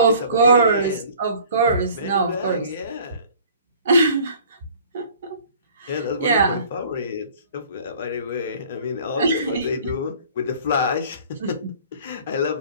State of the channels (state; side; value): inverted; both; correlation -0.51